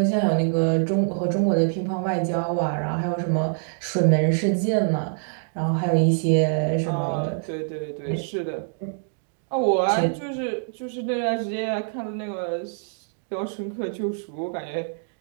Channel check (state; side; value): silent; left; digital silence